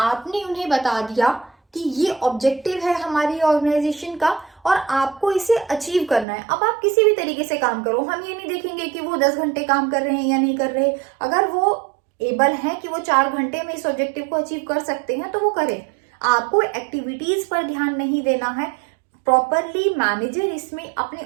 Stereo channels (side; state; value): left; drops out; at 6.2 s